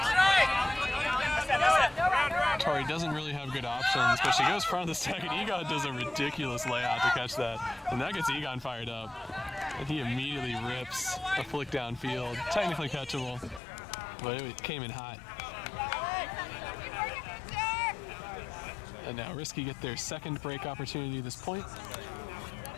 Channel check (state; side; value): drops out; right; at 13.6 s